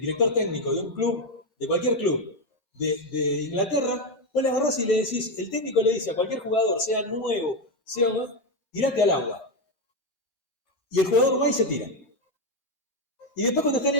técnico de un club, de cualquier club de Inglaterra, vos le agarrás y le decís, el técnico le dice a cualquier jugador, sea nuevo, sea tirate al agua. Y el jugador va y se tira. Y después cuando está en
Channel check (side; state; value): both; normal; correlation 0.08